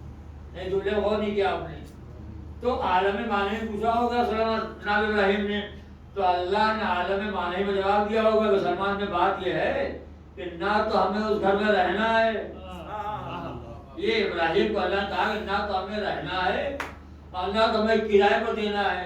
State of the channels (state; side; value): identical; both; correlation 1.00